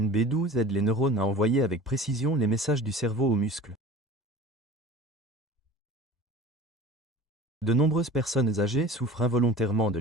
B12 aide les neurones à envoyer avec précision les messages du cerveau aux muscles. De nombreuses personnes âgées souffrent involontairement de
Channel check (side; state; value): both; normal; correlation 0.40